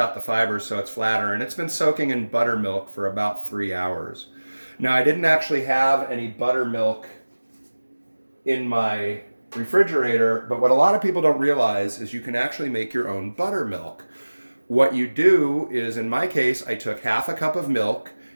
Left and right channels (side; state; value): both; inverted; correlation -1.00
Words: the fibers so it's flatter, and it's been soaking in buttermilk for about 3 hours. Now, I didn't actually have any buttermilk in my refrigerator, but what a lot of people don't realize is you can actually make your own buttermilk. What you do is, in my case, I took half a cup of milk